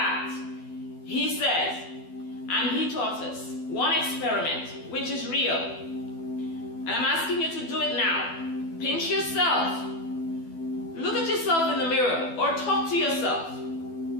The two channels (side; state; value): right; late; 12 ms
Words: He says, and he taught us, one experiment, which is real. And I'm asking you to do it now. Pinch yourself. Look at yourself in the mirror or talk to yourself.